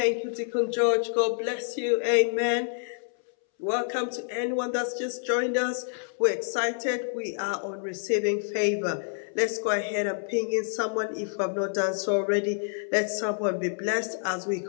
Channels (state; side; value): silent; right; 60 dB below the other